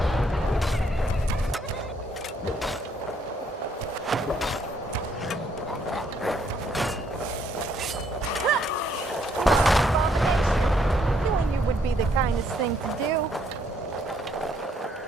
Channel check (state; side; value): normal; both; correlation 0.70